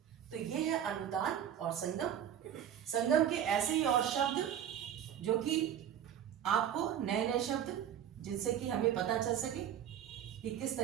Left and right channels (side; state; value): left; quieter; 9.8 dB